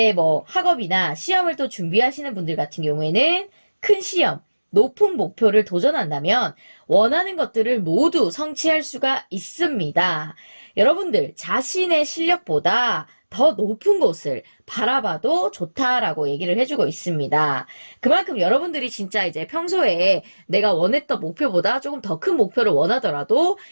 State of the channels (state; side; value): inverted; both; correlation -1.00